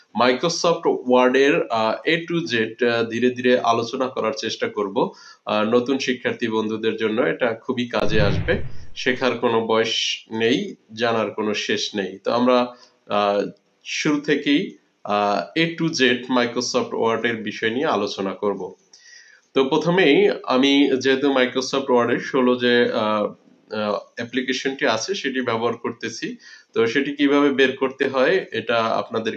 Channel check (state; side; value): identical; both; correlation 1.00